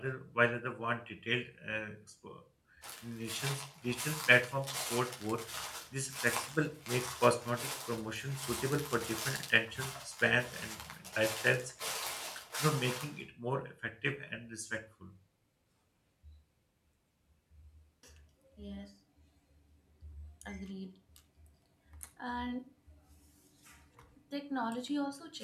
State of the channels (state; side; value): identical; both; correlation 1.00